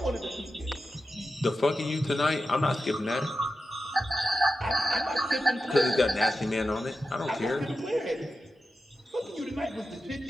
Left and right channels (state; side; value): normal; both; correlation 0.91